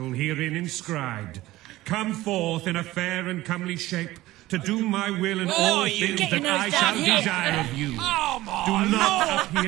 herein inscribed. Come forth in a fair and comely shape, to do my will in all things that I shall desire of you. Do not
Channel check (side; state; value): left; quieter; 17.2 dB